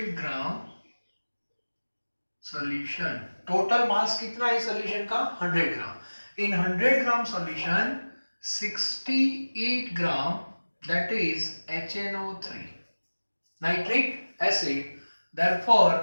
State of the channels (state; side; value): inverted; both; correlation -1.00